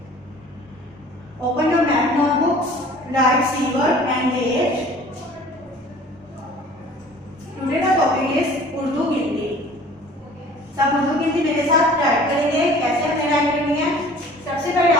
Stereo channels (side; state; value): both; normal; correlation 0.48